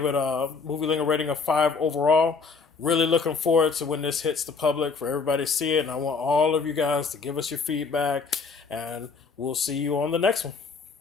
it a movie lingo rating of 5 overall. Really looking forward to when this hits the public for everybody to see it. And I want all of you guys to give us your feedback. And we'll see you on the next one.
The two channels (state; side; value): quieter; right; 4.8 dB